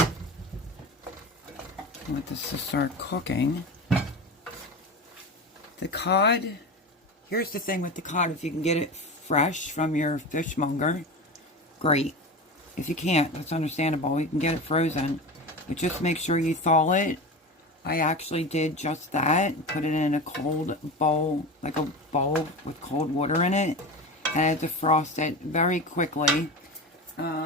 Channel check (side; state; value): both; normal; correlation 0.26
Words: I want this to start cooking. The cod, here's the thing with the cod, if you can get it fresh from your fishmonger, great. If you can't, that's understandable. You can get it frozen, but just make sure you thaw it. I actually did just that, put it in a cold bowl, like a bowl with cold water in it, and I had to defrost it very quickly.